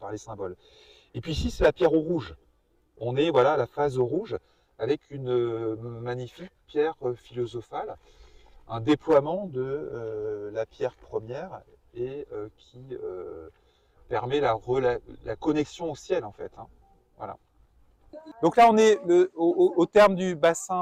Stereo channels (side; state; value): both; identical; correlation 1.00